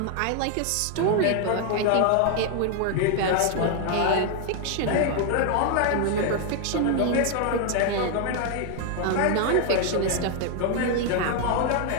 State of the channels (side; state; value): both; different; correlation 0.00